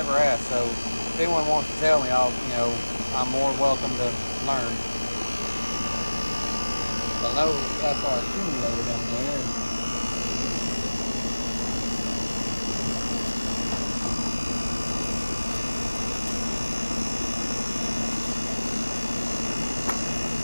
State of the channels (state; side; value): inverted; both; correlation -1.00